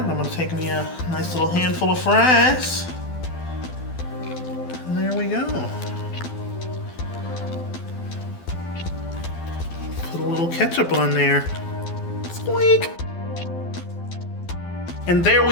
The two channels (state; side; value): late; right; 12 ms